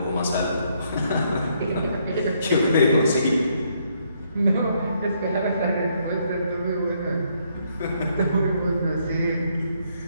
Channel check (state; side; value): inverted; both; correlation -0.72